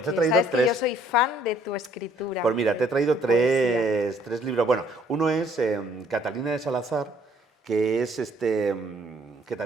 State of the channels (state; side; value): normal; both; correlation 0.62